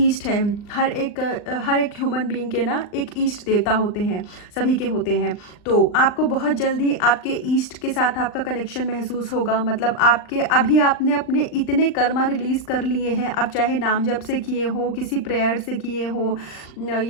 है, हर एक ह्यूमन बीइंग के ना एक ईस्ट देवता होते हैं, सभी के होते हैं। तो आपको बहुत जल्दी आपके ईस्ट के साथ आपका कनेक्शन महसूस होगा। मतलब आपके अभी आपने अपने इतने कर्मा रिलीज कर लिए हैं, अब चाहे नाम जप से किए हो, किसी प्रेयर से किए हो,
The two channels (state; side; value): late; right; 39 ms